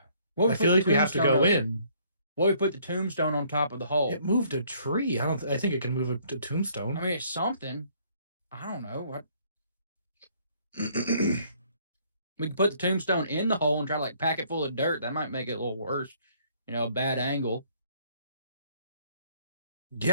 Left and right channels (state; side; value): inverted; both; correlation -0.63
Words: I feel like we have to go in. Well, we put the tombstone on top of the hole. It moved a tree. I think it can move a tombstone. It's something. I don't know what. We can put the tombstone in the hole and try to like pack it full of dirt. That might make it a little worse. A bad angle.